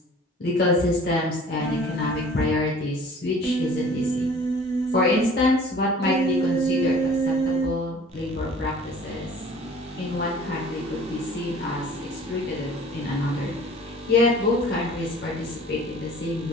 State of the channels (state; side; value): normal; both; correlation 0.48